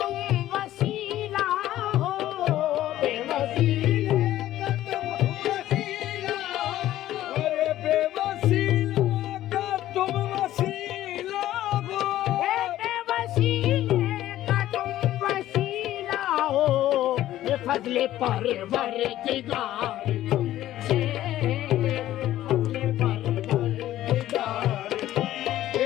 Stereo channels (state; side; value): quieter; right; 13.7 dB